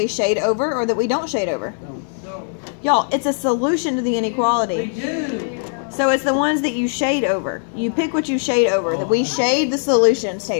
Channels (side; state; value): right; silent; digital silence